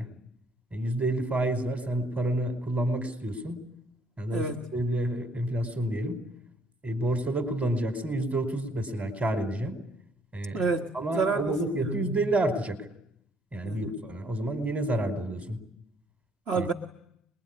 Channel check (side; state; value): both; normal; correlation 0.65